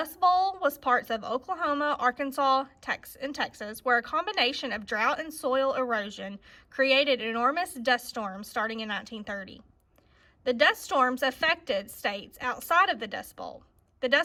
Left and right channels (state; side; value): identical; both; correlation 1.00